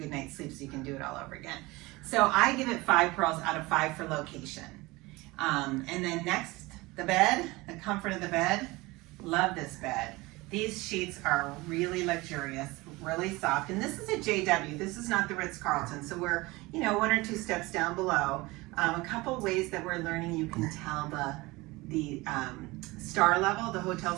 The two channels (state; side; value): quieter; left; 22.0 dB